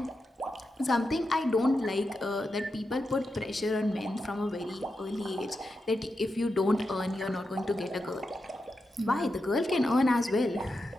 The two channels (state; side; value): normal; both; correlation 0.88